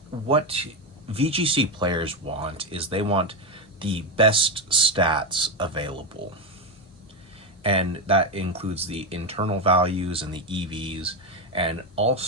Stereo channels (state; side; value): normal; both; correlation 0.11